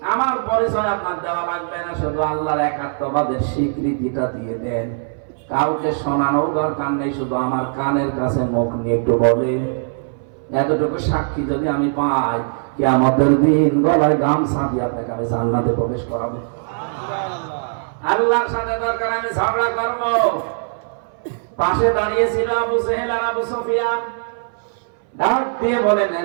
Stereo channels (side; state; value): left; silent; 61 dB below the other